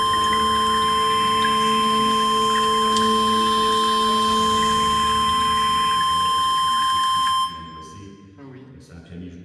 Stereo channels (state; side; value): identical; both; correlation 1.00